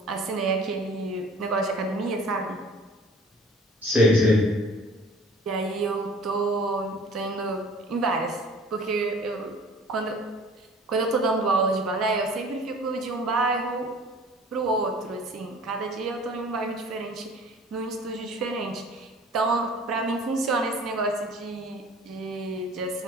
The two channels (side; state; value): both; normal; correlation 0.48